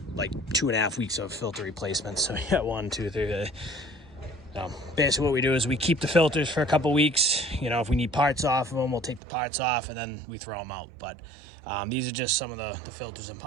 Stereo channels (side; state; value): left; drops out; at 9.2 s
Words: like 2.5 weeks of filter replacements. So we got 1, 2, 3. So basically what we do is we keep the filters for a couple weeks. If we need parts off of them, we'll take the parts off and then we throw them out. But these are just some of the filters and